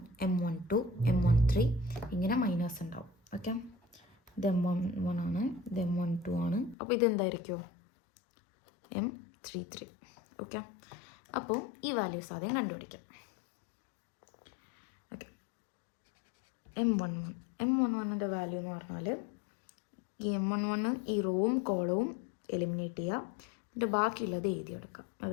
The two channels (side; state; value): right; drops out; at 6.8 s